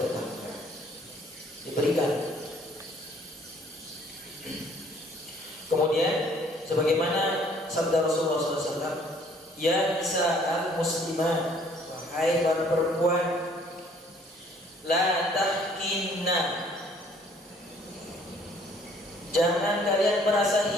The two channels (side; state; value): both; normal; correlation 0.59